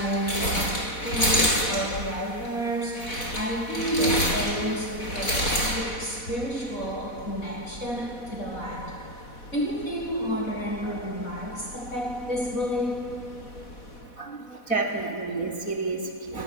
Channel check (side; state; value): right; late; 4.1 ms